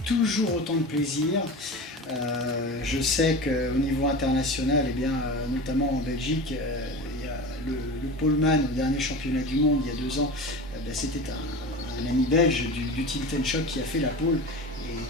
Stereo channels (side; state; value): both; normal; correlation 0.30